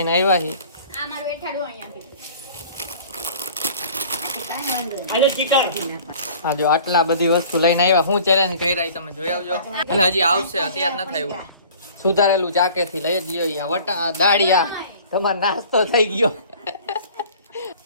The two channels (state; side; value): inverted; both; correlation -0.48